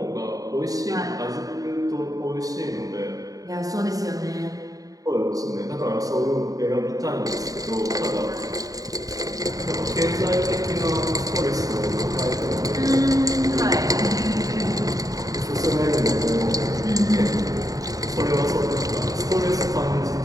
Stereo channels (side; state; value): left; late; 0.17 ms